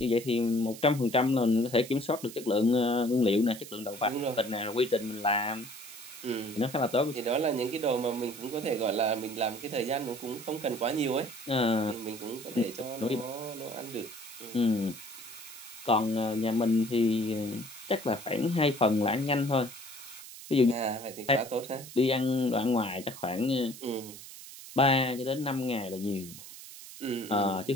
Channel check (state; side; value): noise; right; hiss, 14 dB below the sound